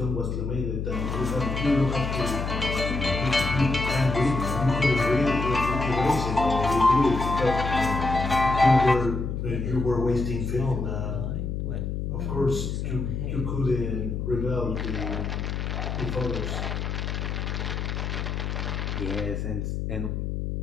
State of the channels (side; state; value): left; noise; hum, 3 dB below the sound